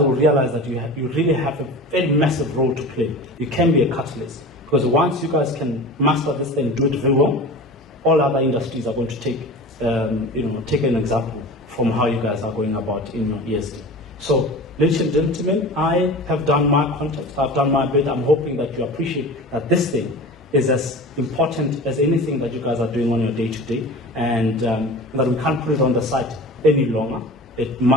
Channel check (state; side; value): normal; both; correlation 0.34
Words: realize that you really have a very massive role to play. You can be a catalyst. Because once you guys can master this and do it very well, all other industries are going to take an example from how you guys are going about in your ESD. So, ladies and gentlemen, I have done my context, I've done my bit. I'm hoping that you appreciate that this thing is as important as anything that you guys are doing on your day-to-day, and that we can't put it on the side any longer. It